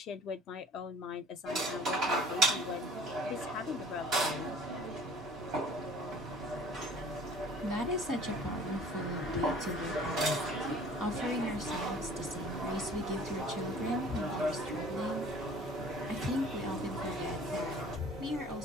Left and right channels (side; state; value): both; normal; correlation 0.48